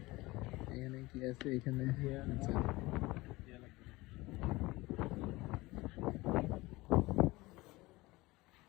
এখানে কি আছে এখানে? আচ্ছা,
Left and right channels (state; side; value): quieter; right; 20.9 dB